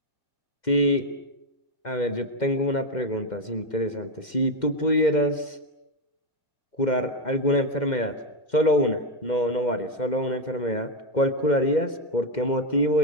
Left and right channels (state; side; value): late; right; 2.1 ms